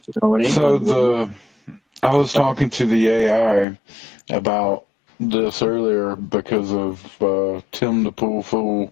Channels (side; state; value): right; drops out; at 3.7 s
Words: was talking to the AI about this earlier because of Tim the Pool Fool,